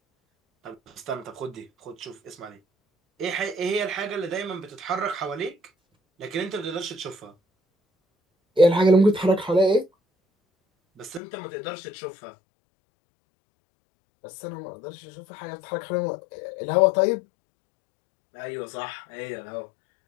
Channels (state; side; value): drops out; right; at 11.2 s